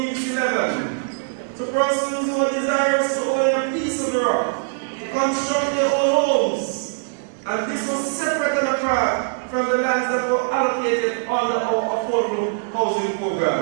11 to persons who are desirous to own a piece of the rock to construct their own homes. And this was separate and apart from the lands that were allocated under our affordable housing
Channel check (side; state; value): left; quieter; 38.5 dB